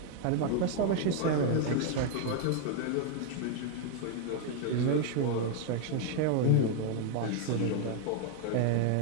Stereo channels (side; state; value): both; different; correlation 0.00